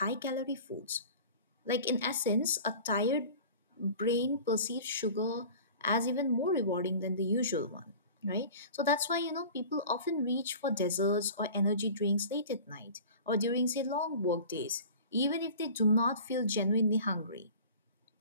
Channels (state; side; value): inverted; both; correlation -0.40